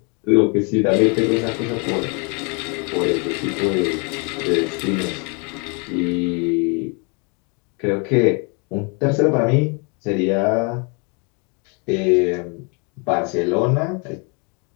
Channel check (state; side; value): quieter; right; 34.4 dB